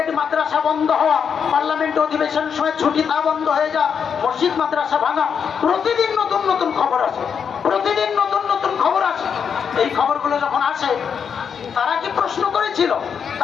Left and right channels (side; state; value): right; quieter; 7.0 dB